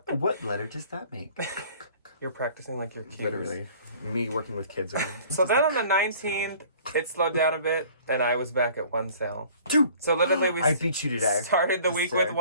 What letter does that make? You're practicing like your cues. Literally. Me working with kids again. So then on the 19th, it slowed down a bit, and I was back at one sale. 2! So literally I beat you today. Started the week with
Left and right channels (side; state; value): both; inverted; correlation -0.51